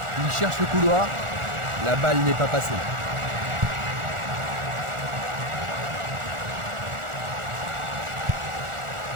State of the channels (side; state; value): left; late; 1.4 ms